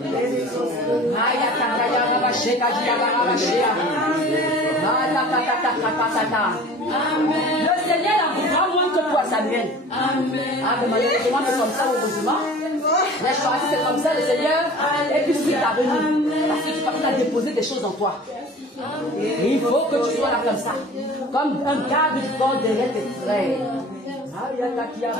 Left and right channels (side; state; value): both; normal; correlation 0.43